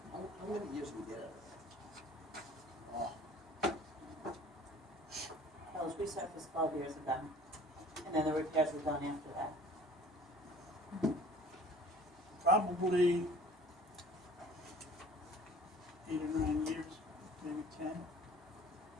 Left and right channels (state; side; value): normal; both; correlation 0.48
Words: How many years we get out of that? That was resurfaced 12 years ago, and then the repairs were done after that. Probably 8 or 9 years, maybe 10.